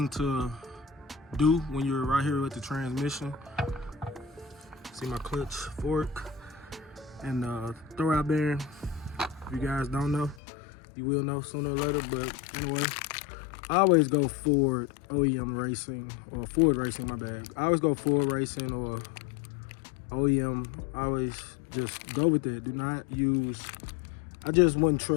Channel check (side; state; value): right; drops out; at 10.4 s